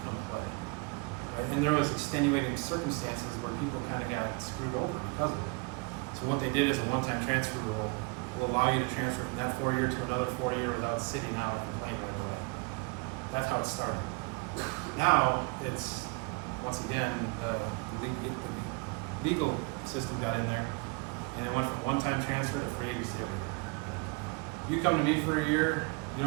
come play. Right? And there was extenuating circumstances where people kind of got screwed over because of it. So what they did is a one-time transfer rule. will allow you to transfer from that 4-year to another 4-year without sitting out and playing right away. That's how it started. Now, it's, once again, the legal system got in there, and it went from one-time transfer to free agency every year. You come to me for a year, you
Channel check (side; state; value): left; quieter; 29.2 dB